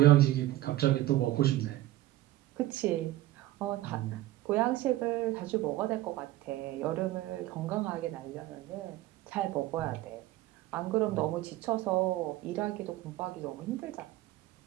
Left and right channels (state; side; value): quieter; left; 15.9 dB